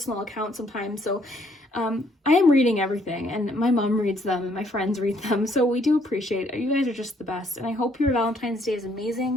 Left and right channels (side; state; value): both; normal; correlation 0.67